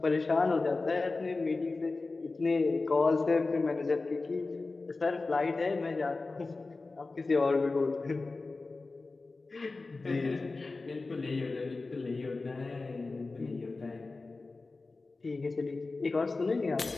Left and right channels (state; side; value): quieter; right; 3.6 dB